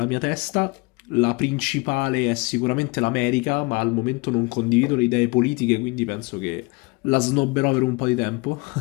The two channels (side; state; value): right; quieter; 26.7 dB